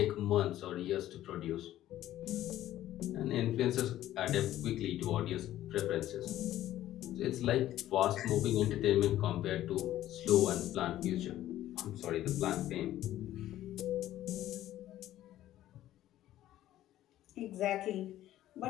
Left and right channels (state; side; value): quieter; right; 13.5 dB